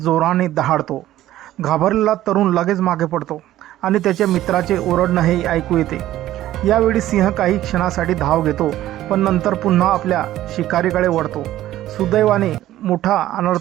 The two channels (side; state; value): left; quieter; 14.0 dB